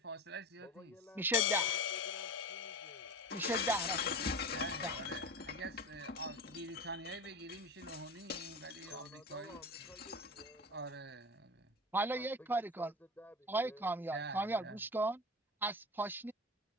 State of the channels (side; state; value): both; normal; correlation 0.29